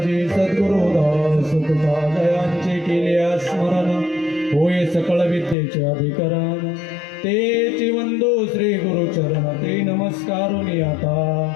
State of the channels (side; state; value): right; drops out; at 5.6 s